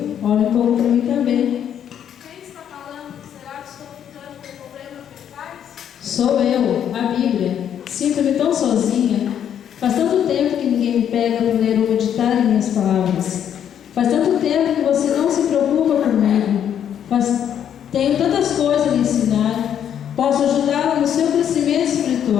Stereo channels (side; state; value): right; quieter; 9.3 dB